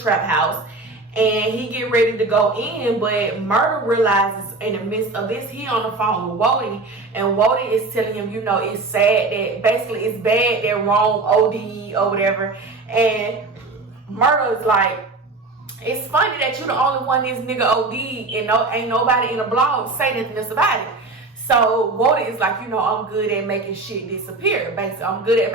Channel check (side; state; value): left; quieter; 3.5 dB